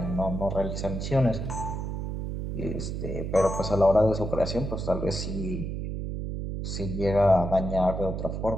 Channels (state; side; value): noise; right; hum, 4 dB below the sound